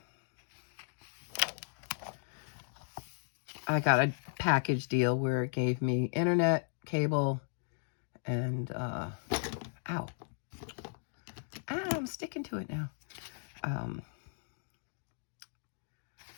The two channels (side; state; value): right; silent; digital silence